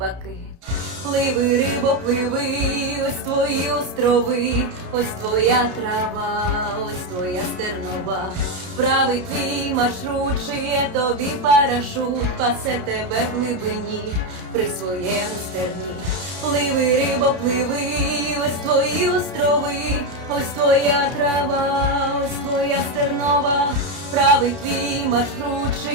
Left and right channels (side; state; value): left; late; 32 ms